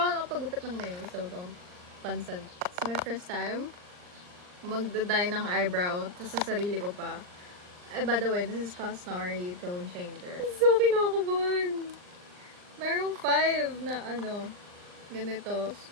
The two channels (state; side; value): late; left; 39 ms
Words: nakapagupit ng nails, so don't pansin. It's my first time magda-dye ng eyebrow, tapos sa sarili ko pa. By the way, this is Cosnari Tone Changer. So kinakabahan! Merong 5 na ganito.